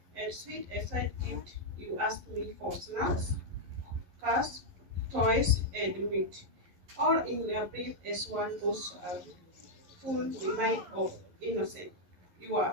sweet aside gift you asked me for snacks, cars, toys, and meat, all in a brief as one those are full remind of innocence. You are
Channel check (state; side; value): late; left; 11 ms